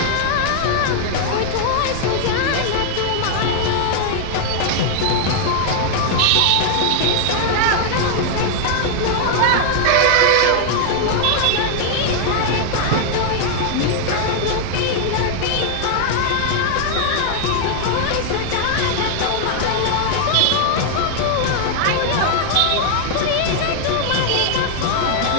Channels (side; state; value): both; different; correlation 0.00